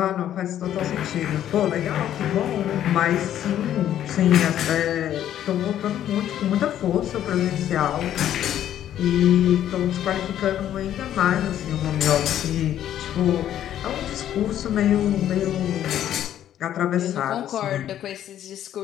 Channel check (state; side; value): quieter; right; 11.2 dB